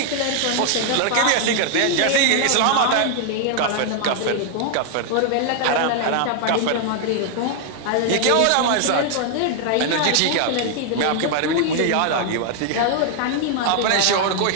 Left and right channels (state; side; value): different; both; correlation 0.00